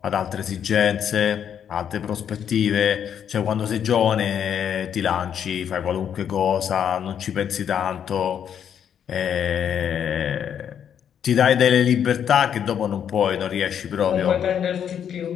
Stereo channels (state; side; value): quieter; right; 8.7 dB